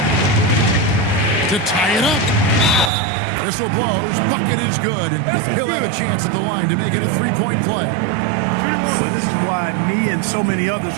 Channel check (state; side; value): drops out; left; at 2.9 s